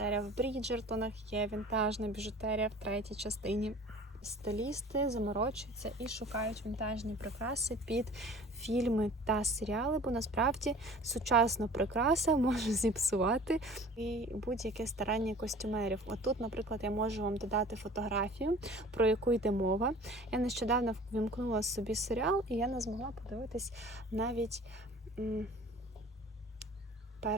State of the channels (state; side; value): normal; both; correlation 0.45